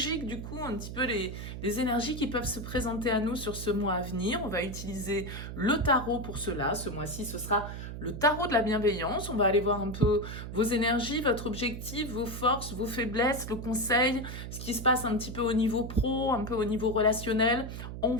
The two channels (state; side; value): noise; right; hum, 8 dB below the sound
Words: du coup, un petit peu les énergies qui peuvent se présenter à nous sur ce mois à venir. On va utiliser le tarot pour cela. Ce mois-ci, ce sera le tarot de la bienveillance. On va aller voir un peu vos énergies, votre objectif, vos forces, vos faiblesses, le conseil, ce qui se passe un petit peu au niveau pro, un peu au niveau relationnel en